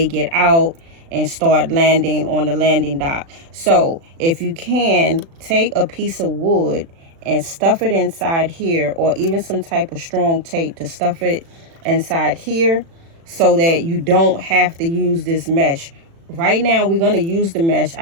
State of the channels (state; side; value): late; left; 36 ms